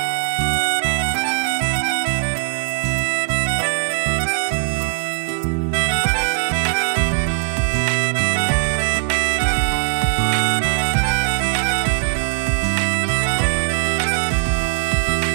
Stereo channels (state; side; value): silent; left; 66 dB below the other